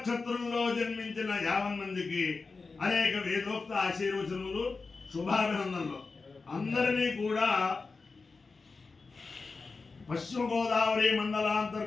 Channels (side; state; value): right; quieter; 4.2 dB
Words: జన్మించిన 50 మందికి అనేక వేదోక్త ఆశీర్వచనములు శుభాభినందనలు అందరినీ కూడా పశ్చిమ గోదావరి